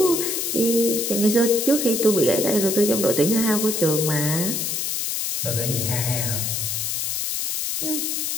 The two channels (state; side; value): noise; left; hiss, 1 dB below the sound